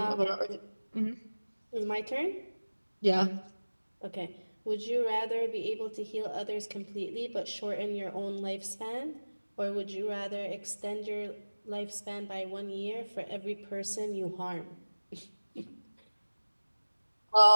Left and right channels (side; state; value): both; inverted; correlation -1.00